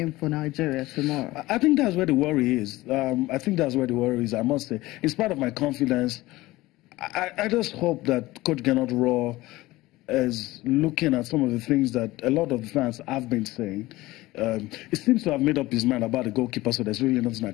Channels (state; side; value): quieter; right; 18.7 dB